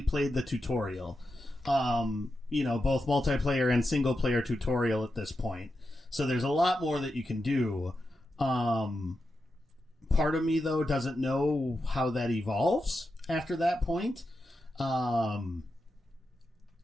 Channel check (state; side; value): normal; both; correlation 0.88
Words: played the tutorial. Both multiplayer and single player tutorial at this point. So there's a lot more that you can do. Part of me though doesn't know how that evolves after that point. So